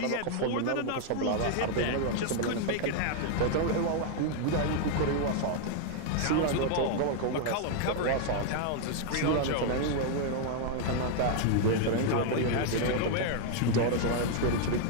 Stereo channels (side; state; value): both; different; correlation 0.00